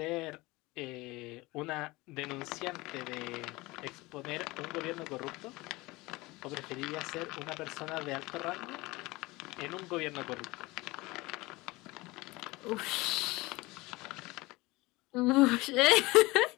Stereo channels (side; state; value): right; quieter; 21.8 dB